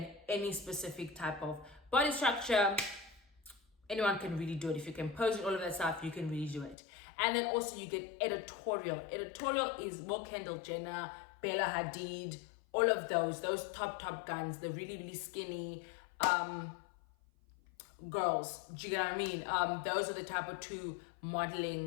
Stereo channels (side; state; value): right; drops out; at 6.8 s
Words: any specific type of body structure. Anyone can really do it. If you can pose and all of that stuff, you can really do it. And then also you get editorial. Editorial is more Kendall Jenner, Bella Hadid, all of those top guns, the really, really skinny girls. Do you get what I mean? Those are the type of two